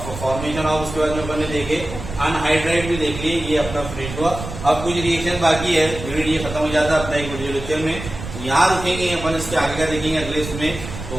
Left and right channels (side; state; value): right; noise; rumble, 10 dB below the sound